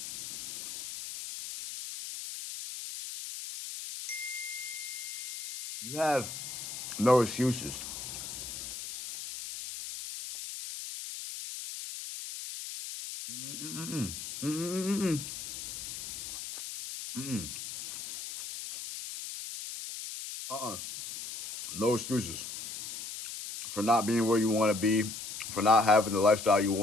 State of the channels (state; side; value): noise; left; hiss, 8 dB below the sound